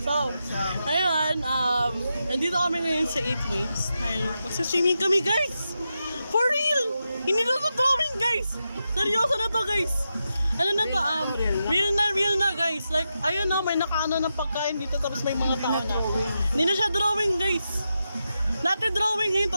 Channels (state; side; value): inverted; both; correlation -0.88